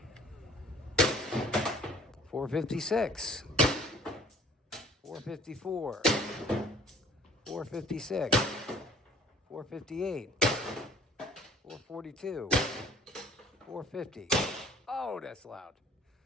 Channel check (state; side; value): normal; both; correlation 0.53